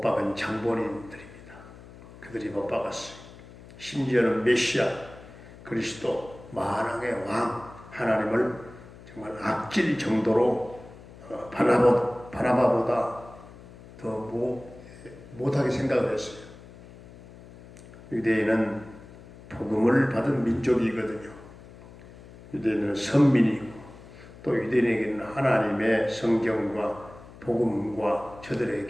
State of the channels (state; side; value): noise; left; hum, 19 dB below the sound